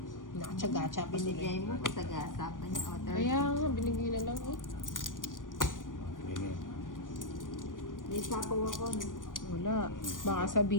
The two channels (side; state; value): right; late; 0.89 ms